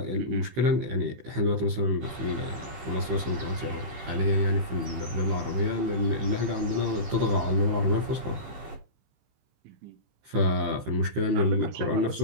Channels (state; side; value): late; left; 16 ms